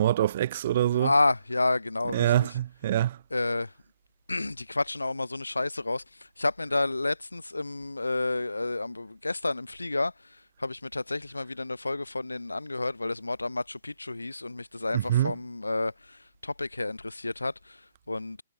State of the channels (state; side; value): inverted; both; correlation -0.80